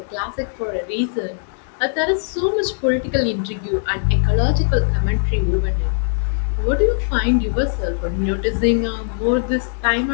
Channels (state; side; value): silent; right; 60 dB below the other